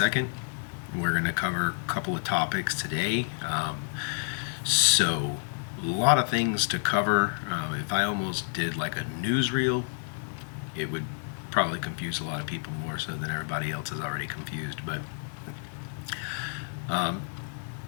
We're going to cover a couple of topics today. So, a lot of things to cover. If I almost did like a newsreel, it would probably confuse a lot of people more so than everybody else is already confused. But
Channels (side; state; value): right; silent; digital silence